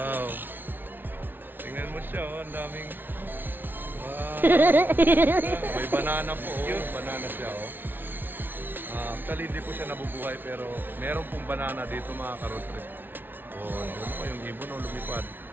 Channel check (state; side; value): late; left; 0.095 ms